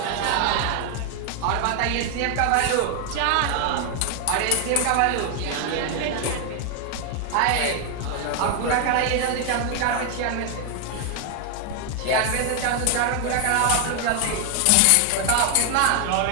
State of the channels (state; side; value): different; both; correlation 0.01